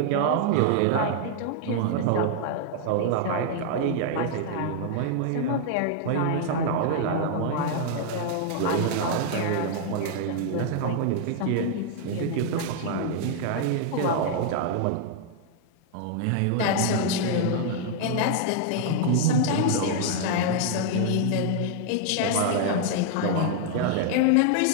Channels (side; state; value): both; different; correlation 0.00